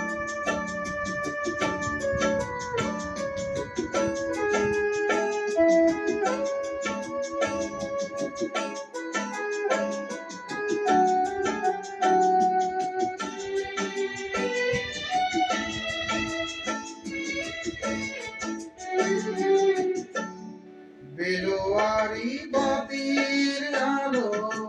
বেলোয়ারি বাতির আলো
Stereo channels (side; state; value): both; identical; correlation 1.00